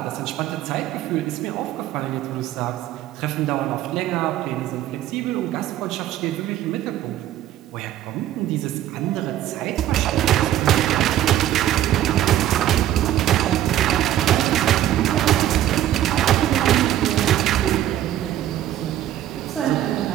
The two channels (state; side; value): quieter; left; 12.5 dB